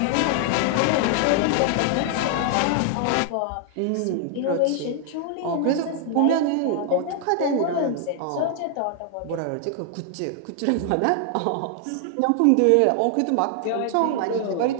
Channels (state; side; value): different; both; correlation 0.00